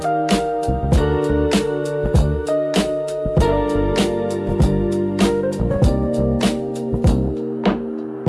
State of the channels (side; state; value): both; identical; correlation 1.00